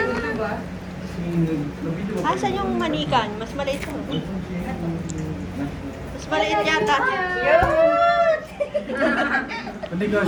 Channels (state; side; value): identical; both; correlation 1.00